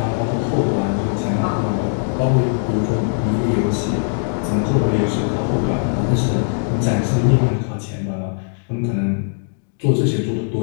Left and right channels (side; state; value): right; silent; digital silence